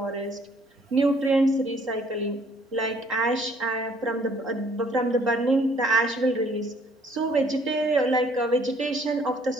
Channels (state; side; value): normal; both; correlation 0.62